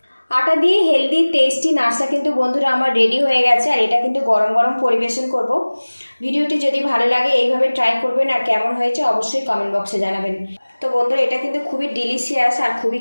আটা দিয়ে হেলদি টেস্টি নাস্তা কিন্তু বন্ধুরা আমার রেডি হয়ে গেছে, আর এটা কিন্তু গরম গরম পরিবেশন করব। ভিডিওটি যদি ভালো লাগে এইভাবে ট্রাই করবেন, আর কেমন হয়েছে অবশ্যই কমেন্ট বক্সে জানাবেন। তো বন্ধুরা, এটা কিন্তু খুবই ডিলিশিয়াস আর খুবই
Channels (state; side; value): inverted; both; correlation -1.00